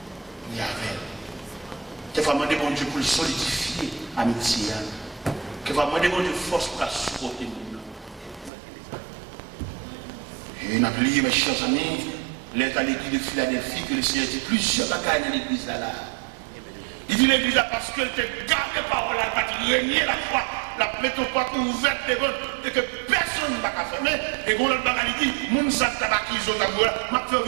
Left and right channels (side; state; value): left; drops out; at 8.5 s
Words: Il y avait. Quelquefois, demander bon Dieu pour le solidifier, amitié. Quelquefois, demander bon Dieu force pour la supporter. Et on a oublié, mes chers amis, l'être à l'église de Philadelphie, que le Seigneur dit plusieurs bagailles dans l'église là. Il dit l'église là parce qu'elle te garde les paroles, elle va te régner la foi, la métropole ouverte et que personne ne va fermer. Et quand l'autre bagaille dit, moun sa tabakizo tabouya, m'a fait